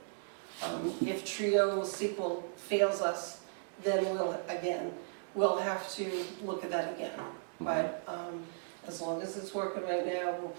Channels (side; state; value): left; silent; digital silence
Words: If Trio SQL fails us, then we'll have to look at that again. But as long as it's working right now,